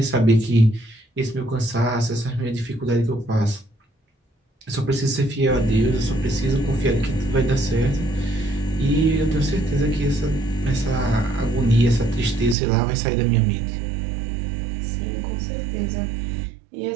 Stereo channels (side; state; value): left; drops out; at 12.6 s